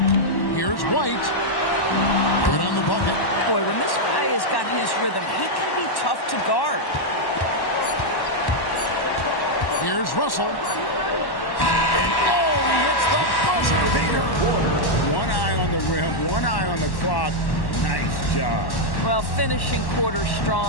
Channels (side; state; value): right; late; 1.1 ms